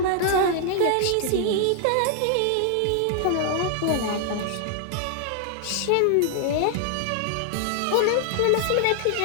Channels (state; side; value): different; both; correlation 0.00